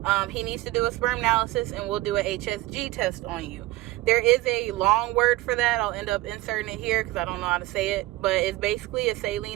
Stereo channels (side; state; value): left; quieter; 18.4 dB